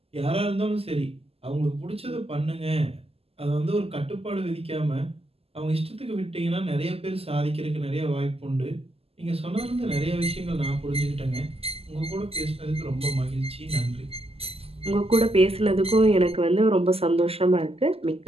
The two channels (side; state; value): left; late; 0.29 ms